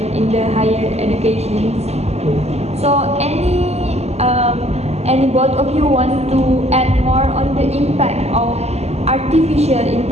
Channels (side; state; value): left; late; 0.31 ms